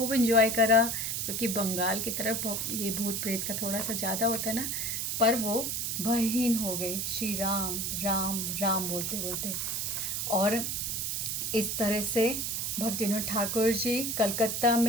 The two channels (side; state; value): right; noise; hiss, 1 dB below the sound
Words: एंजॉय करा, क्योंकि बंगाल की तरफ ये भूत प्रेत का थोड़ा सा ज़्यादा होता है ना, पर वो भयहीन हो गए श्री राम राम राम बोलते बोलते। और इस तरह से भक्तिविनोद ठाकुर जी कलकत्ता